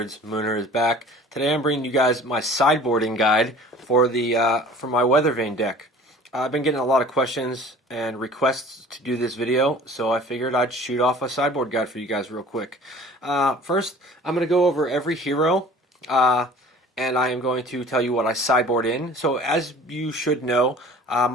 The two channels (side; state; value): both; normal; correlation 0.46